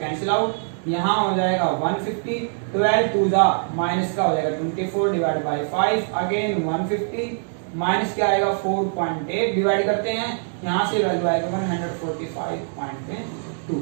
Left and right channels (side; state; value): left; silent; digital silence